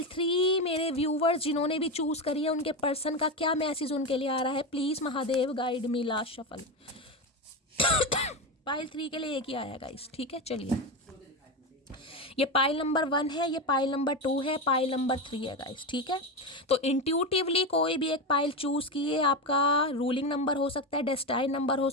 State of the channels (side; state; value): both; normal; correlation 0.16